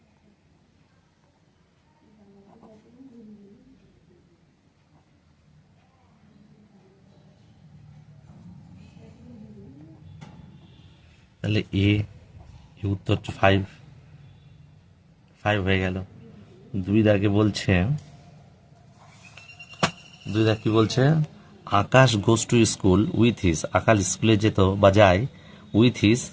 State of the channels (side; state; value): both; identical; correlation 1.00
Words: তাহলে এ উত্তর 5 হয়ে গেল। 2 দাগে বলছে, 2 দাগ কি বলছে? Akash goes to school with his, Akash স্কুলে যেত বা যায় উইথ হিজ,